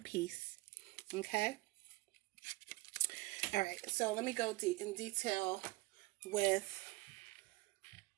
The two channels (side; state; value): left; quieter; 22.3 dB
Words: peace. Okay? All right, so let me go in detail with